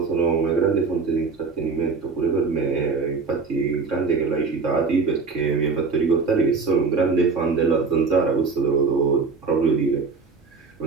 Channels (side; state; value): left; quieter; 4.6 dB